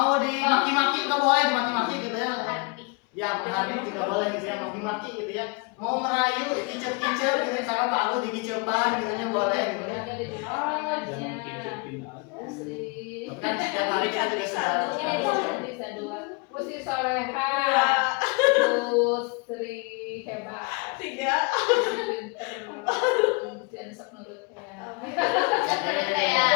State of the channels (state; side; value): quieter; right; 30.2 dB